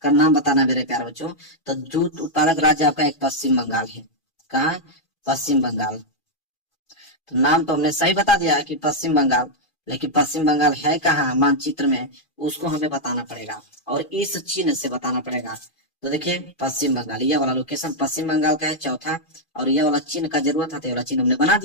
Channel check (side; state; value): right; late; 2.4 ms